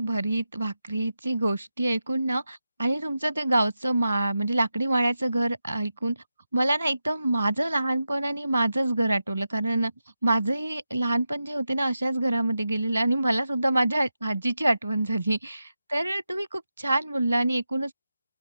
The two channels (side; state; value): both; inverted; correlation -0.90